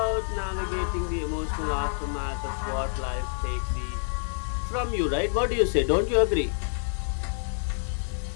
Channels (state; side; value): silent; right; digital silence